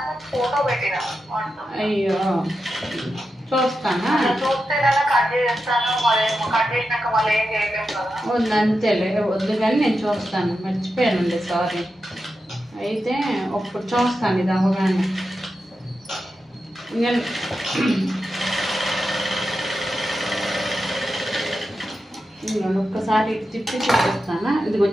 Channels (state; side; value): normal; both; correlation 0.89